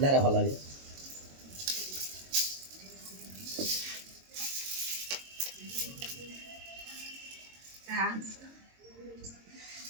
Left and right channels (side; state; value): left; late; 22 ms